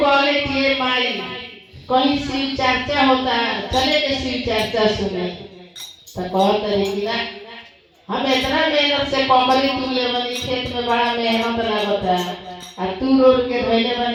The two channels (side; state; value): both; identical; correlation 1.00